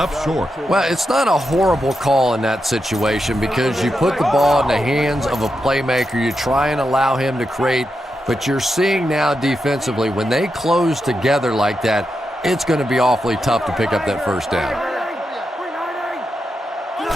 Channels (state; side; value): normal; both; correlation 0.86